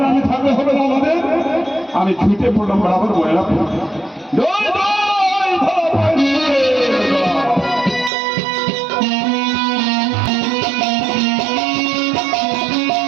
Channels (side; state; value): left; drops out; at 8.1 s